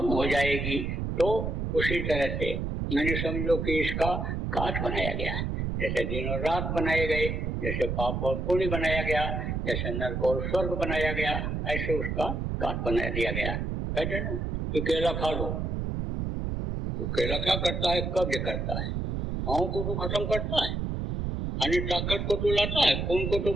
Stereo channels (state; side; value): noise; right; rumble, 2 dB below the sound